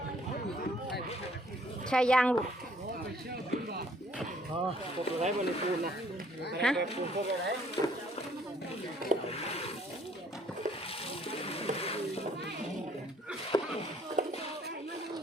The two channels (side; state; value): both; normal; correlation 0.61